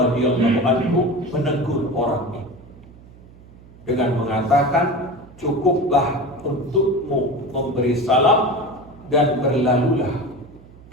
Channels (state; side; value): noise; right; hum, 22 dB below the sound